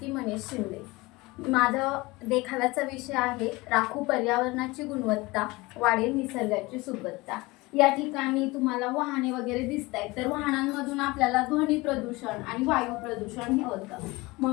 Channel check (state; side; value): quieter; right; 22.3 dB